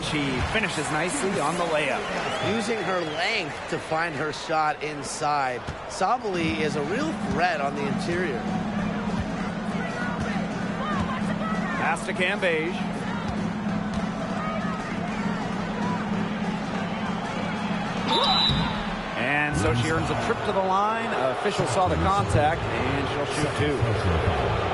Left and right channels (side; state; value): both; identical; correlation 1.00